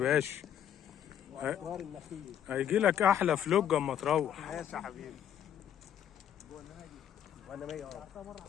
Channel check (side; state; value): right; quieter; 9.8 dB